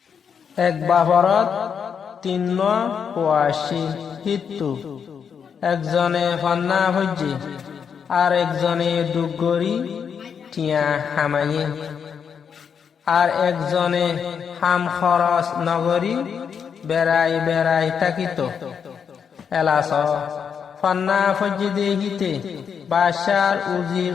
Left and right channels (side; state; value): right; quieter; 7.0 dB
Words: এক বাহরত তিন কোয়াশি হিতু একজনে ফান্না হজ্জি আর একজনে দুগরি টিয়া হামাইয়ে আর একজনে হাম খরচ নগরী বেড়াই বেড়াই তাকিত এলাস ফান্না ফজ্জি দেহিতে বাসার উজির